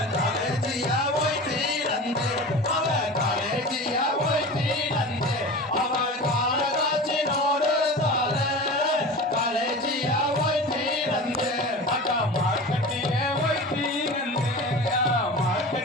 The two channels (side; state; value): both; normal; correlation 0.33